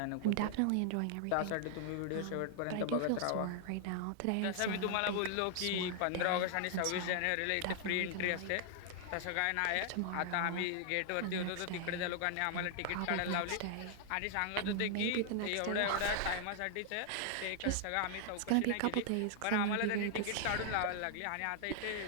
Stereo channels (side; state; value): both; different; correlation 0.00